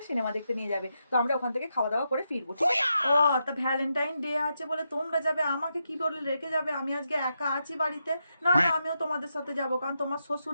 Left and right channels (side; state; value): both; inverted; correlation -0.84